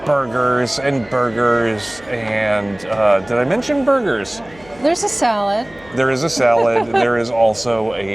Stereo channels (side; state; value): left; noise; hum, 24 dB below the sound